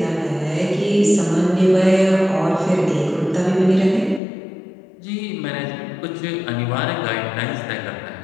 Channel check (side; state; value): right; drops out; at 4.2 s